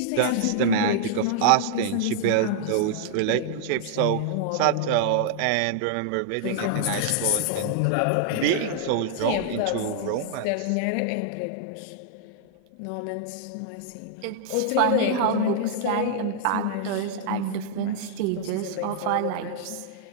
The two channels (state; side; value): different; both; correlation -0.01